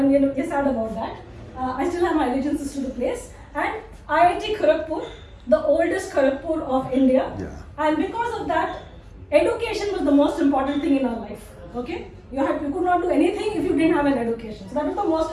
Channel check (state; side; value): identical; both; correlation 1.00